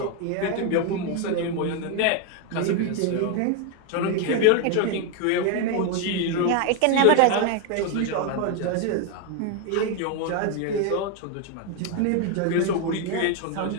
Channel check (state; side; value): different; both; correlation 0.01